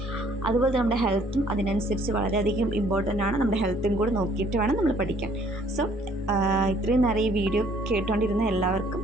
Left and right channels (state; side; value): normal; both; correlation 0.61